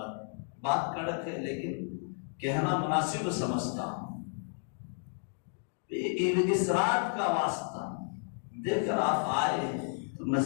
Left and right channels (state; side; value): silent; right; 56 dB below the other